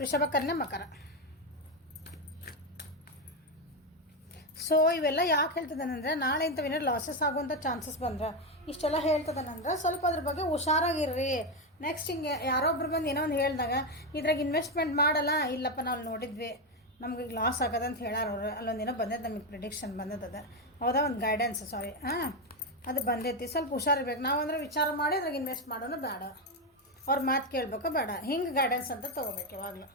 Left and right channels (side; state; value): both; normal; correlation 0.08